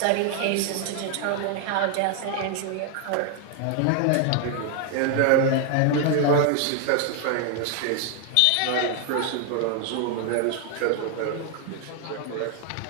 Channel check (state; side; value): different; both; correlation 0.00